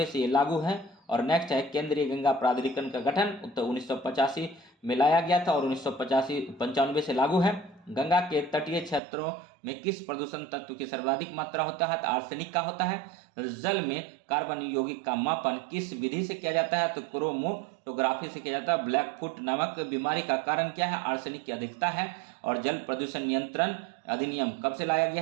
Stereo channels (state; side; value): drops out; left; at 9.0 s